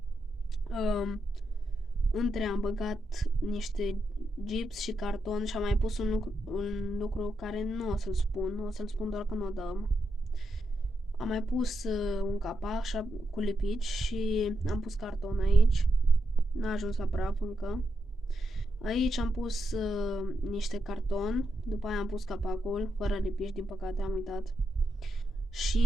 Între am băgat niște gips și carton și am mai pus un lucru care nu o să-l spun, o să-l spun doar când o dăm. Am mai pus un capac cu lipici și am pus carton aici. N-a ajuns la praf încă. Aici am pus niște carton, după aia am pus capacul, fără lipici, din păcate am uitat.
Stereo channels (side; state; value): both; normal; correlation 0.84